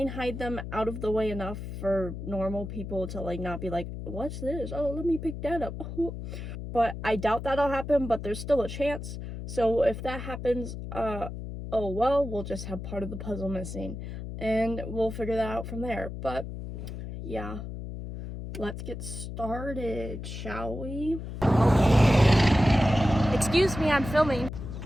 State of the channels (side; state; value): left; noise; hum, 8 dB below the sound